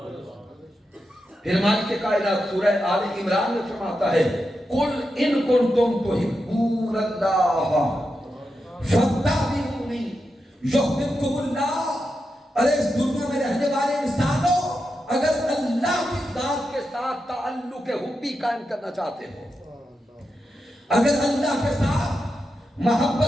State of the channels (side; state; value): both; normal; correlation 0.88